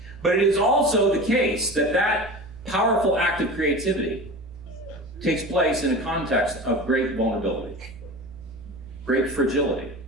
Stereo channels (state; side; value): noise; right; hum, 22 dB below the sound